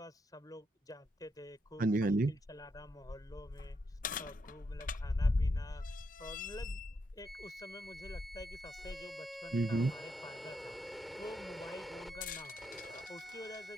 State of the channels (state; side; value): normal; both; correlation 0.80